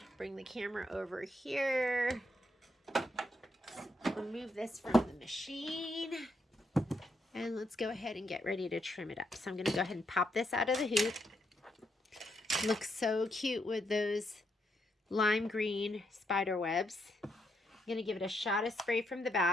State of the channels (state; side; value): normal; both; correlation 0.78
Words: bring the camera over here. Remove this from the machine. And let's go ahead and get ready to trim it up. So I'm gonna go ahead and pop this out of the hoop. Looks so cute with those lime green spider webs. I'm gonna give it a shot of spray from the